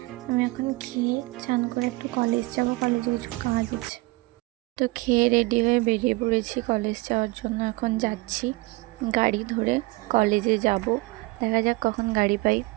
আমি এখন খেয়ে চান করে একটু কলেজ যাব, কলেজে কিছু কাজ আছে। তো খেয়ে রেডি হয়ে বেরিয়ে পড়েছি কলেজ যাওয়ার জন্য। এখন যাচ্ছি গাড়ি ধরে কলেজে যাব, দেখা যাক কখন গাড়ি পাই।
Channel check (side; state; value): left; quieter; 23.0 dB